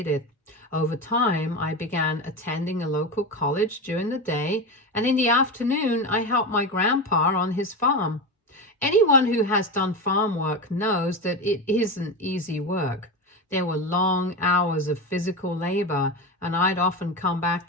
Over time, I began attending a local college during the day, and in the afternoon, I helped my grandpa on his farm. Anyone who has done farm work knows that it isn't easy work. There were long hours of physical labor, and I'd often come back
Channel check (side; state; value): both; normal; correlation 0.20